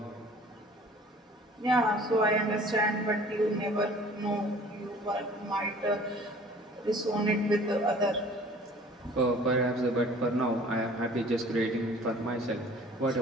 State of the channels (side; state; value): both; normal; correlation 0.49